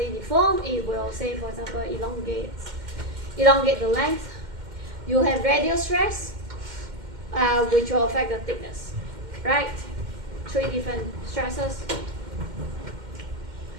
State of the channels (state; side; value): late; left; 2.1 ms